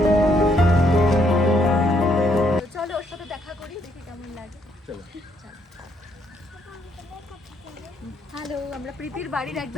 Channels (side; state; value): both; normal; correlation 0.72